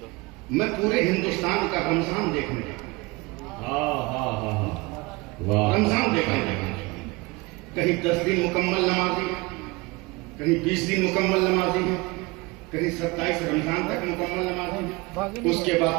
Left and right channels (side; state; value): left; quieter; 24.5 dB